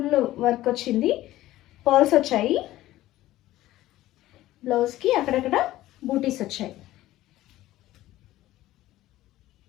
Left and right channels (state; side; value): quieter; right; 15.5 dB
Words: వర్క్ వచ్చింది. పర్ల్స్ వచ్చాయి. బ్లౌజ్కి అక్కడక్కడ బూటీస్ వచ్చాయి.